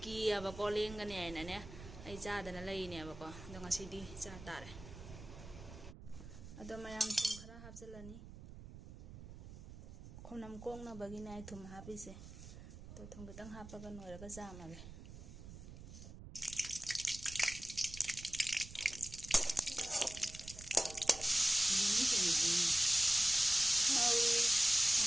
ꯀꯤꯌꯦꯕꯀꯣ ꯂꯦꯡꯒꯅꯤ ꯍꯥꯏꯅꯅꯦ ꯑꯩ ꯆꯥꯗꯅ ꯂꯩꯅꯦꯕꯀꯣ ꯑꯗꯣ ꯉꯁꯤꯗꯤ ꯆꯥ ꯇꯥꯔꯦ ꯑꯗꯣ ꯃꯌꯥꯝ ꯊꯨꯝ ꯈꯔ ꯍꯥꯞꯆꯤꯜꯂꯅꯤ ꯈꯣꯝꯅꯝ ꯀꯣꯡꯅꯕꯒꯤꯅꯦ ꯑꯩ ꯊꯨꯝ ꯍꯥꯞꯄꯤꯁꯦ ꯇꯣ ꯊꯨꯝ ꯈꯤꯇꯪ ꯍꯥꯞꯄꯒ ꯅꯣꯏꯔꯒ ꯆꯥꯝꯃꯒꯦ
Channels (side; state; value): right; noise; rumble, 14 dB below the sound